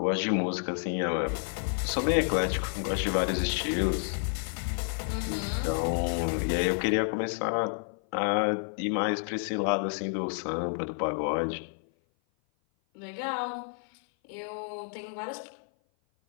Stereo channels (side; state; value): right; silent; 56 dB below the other